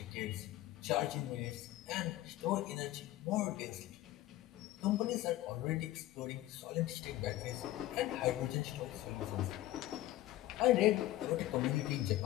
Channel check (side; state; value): right; quieter; 15.4 dB